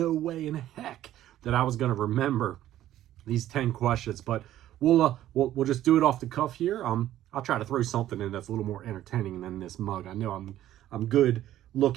way in heck that I was going to remember these 10 questions, but we'll just do it off the cuff here. I'll try to throw something in that's a little more entertaining than this mug. I know I'm good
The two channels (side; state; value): left; quieter; 13.0 dB